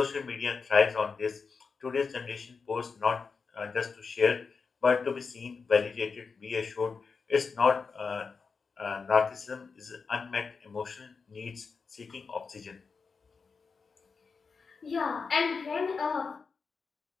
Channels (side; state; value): right; quieter; 5.0 dB